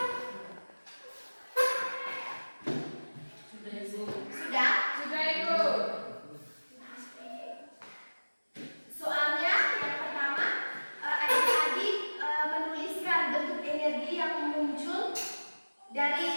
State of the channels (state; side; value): inverted; both; correlation -1.00